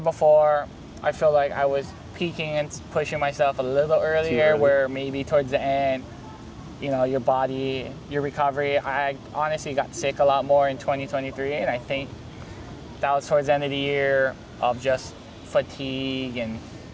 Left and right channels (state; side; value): identical; both; correlation 1.00